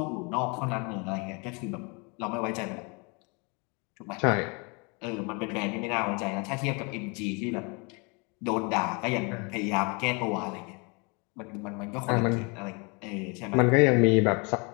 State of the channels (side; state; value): right; quieter; 31.2 dB